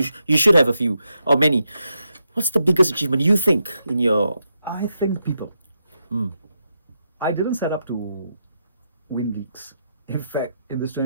should have a few or many. What's the biggest achievement you think in your? I think people. I didn't set up to win leagues. In fact, in this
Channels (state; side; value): inverted; both; correlation -0.84